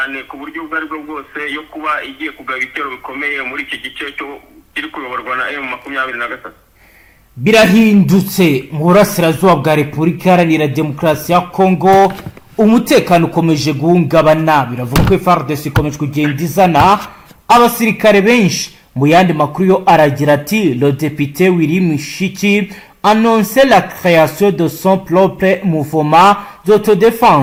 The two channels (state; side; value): identical; both; correlation 1.00